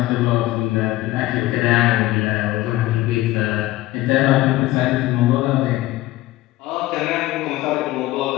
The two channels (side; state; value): right; quieter; 17.0 dB